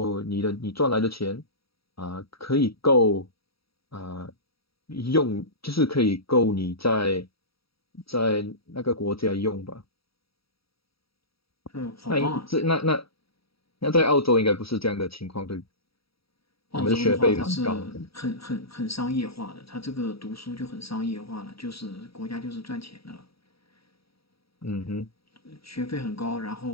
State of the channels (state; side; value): late; right; 0.76 ms